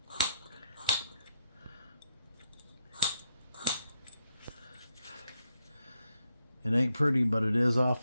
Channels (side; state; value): both; inverted; correlation -0.79